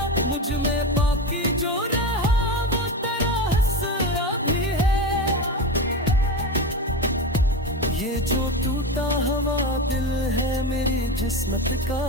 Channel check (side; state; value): both; normal; correlation 0.21